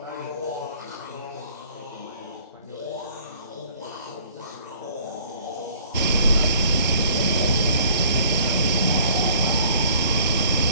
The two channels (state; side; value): inverted; both; correlation -0.55